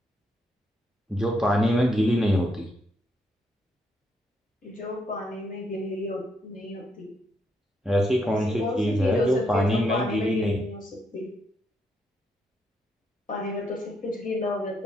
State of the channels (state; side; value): normal; both; correlation 0.77